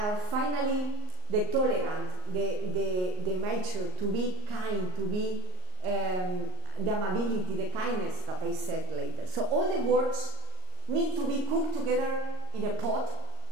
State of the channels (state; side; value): late; left; 38 ms